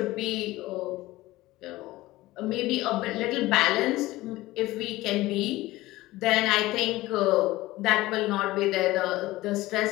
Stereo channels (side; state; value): right; quieter; 18.1 dB